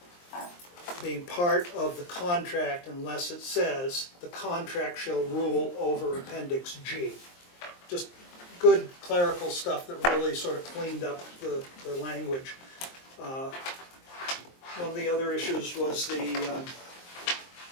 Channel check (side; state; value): right; late; 23 ms